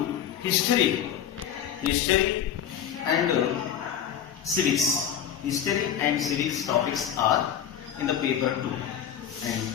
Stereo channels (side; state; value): right; quieter; 9.4 dB